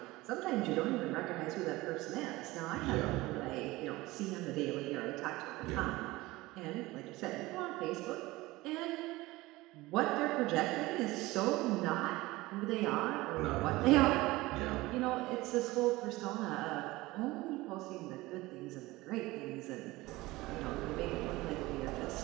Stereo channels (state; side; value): quieter; left; 19.9 dB